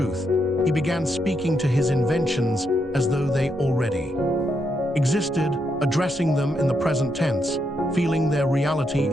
he began speaking to his inventions as though they already existed, addressing them in the present tense, feeling their reality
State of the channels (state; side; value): normal; both; correlation 0.80